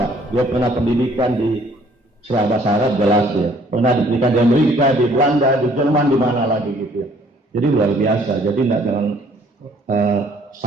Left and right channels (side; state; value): both; normal; correlation 0.60